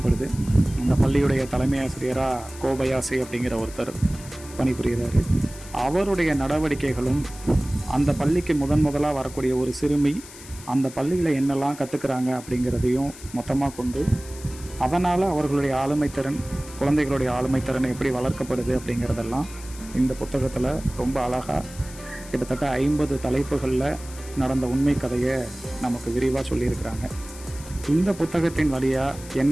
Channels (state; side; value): noise; left; hiss, 17 dB below the sound